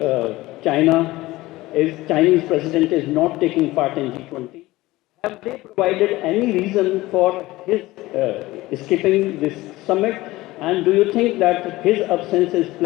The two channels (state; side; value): quieter; right; 18.7 dB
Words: Chinese President is not taking part in G20. Have they provided any reason for his skipping this summit? And do you think that his absence is